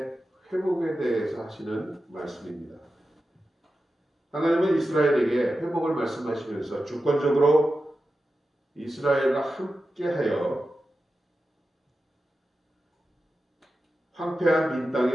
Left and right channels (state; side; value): normal; both; correlation 0.92